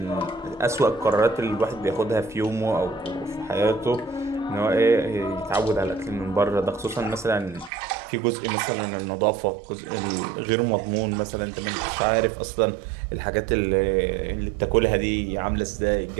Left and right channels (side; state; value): left; drops out; at 7.7 s